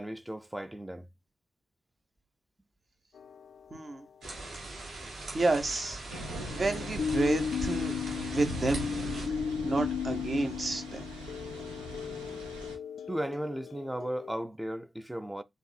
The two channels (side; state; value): both; normal; correlation 0.86